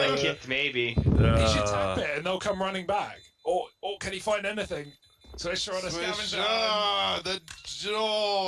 kit, maybe. he should tap it and they'll come running back. Or can he find anything? Swisher on a scavenger. The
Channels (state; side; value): identical; both; correlation 1.00